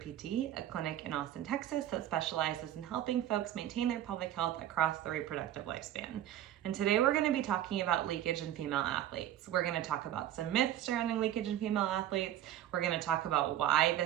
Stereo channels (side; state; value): left; quieter; 12.0 dB